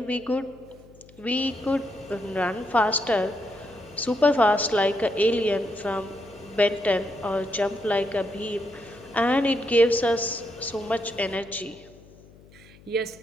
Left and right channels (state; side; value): noise; left; hum, 24 dB below the sound